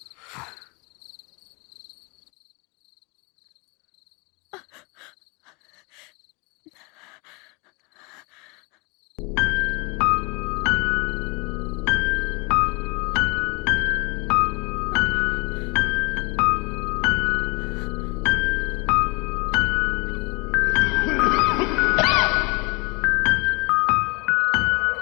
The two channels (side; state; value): right; quieter; 28.5 dB